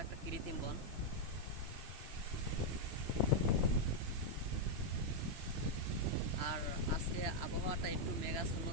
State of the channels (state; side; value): late; left; 3.0 ms